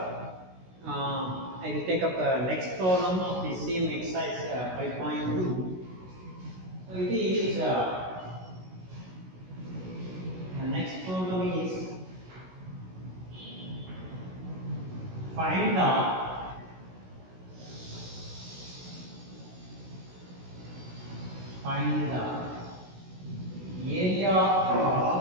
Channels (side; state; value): left; late; 16 ms